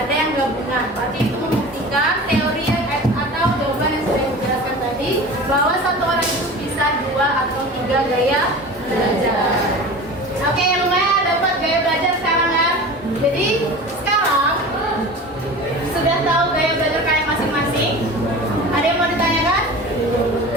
yang gabungan. Berarti itu membuktikan teori yang atau jawaban yang sudah dijelaskan tadi bahwa satu orang itu bisa 2 atau 3 gaya belajar. Oke, lumayan dapat gaya belajar sekarang ya. Jadi sekarang sudah tahu gaya belajar kalian masing-masing. Ada yang mau ditanyakan?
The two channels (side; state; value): both; normal; correlation 0.36